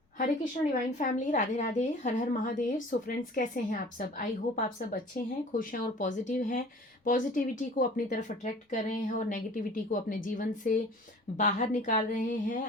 हरे Krishna divine family, Radhe Radhe, हर हर Mahadev. So friends, कैसे हैं आप सब? आई होप आप सब अच्छे हैं, खुश हैं और पॉजिटिव हैं। पॉजिटिविटी को अपनी तरफ अट्रैक्ट कर रहे हैं और नेगेटिविटी को अपने जीवन से बाहर निकाल रहे हैं।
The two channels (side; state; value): both; normal; correlation 0.46